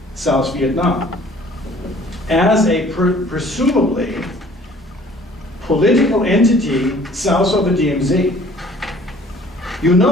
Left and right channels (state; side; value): normal; both; correlation 0.53